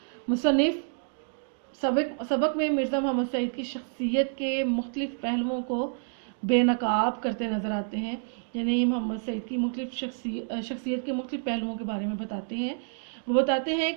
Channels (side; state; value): left; silent; digital silence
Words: مصنف سبق میں مرزا محمد سعید کی شخصیت کے مختلف پہلوؤں کو بے نقاب کرتے نظر آتے ہیں، یعنی محمد سعید کی مختلف شخصیت کے مختلف پہلوؤں کے بارے میں بتاتے ہیں۔ وہ بتاتے ہیں